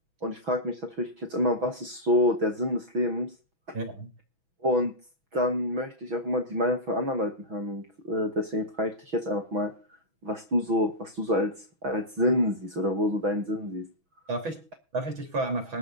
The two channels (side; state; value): left; late; 6.1 ms